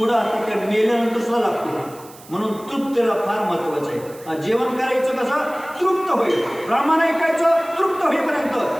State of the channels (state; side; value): noise; right; hiss, 21 dB below the sound